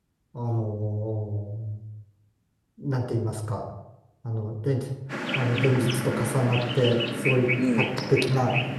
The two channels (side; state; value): both; identical; correlation 1.00